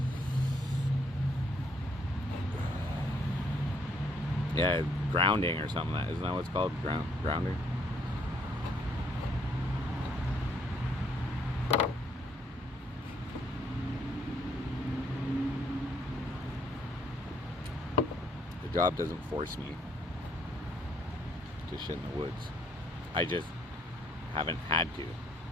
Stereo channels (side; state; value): both; normal; correlation 0.67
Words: Yeah, grounding or something. Isn't that what it's called? Grounding? The job doesn't force me to shit in the woods. I just haven't had to.